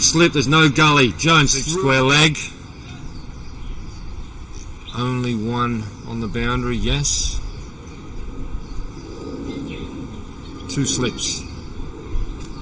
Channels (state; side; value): identical; both; correlation 1.00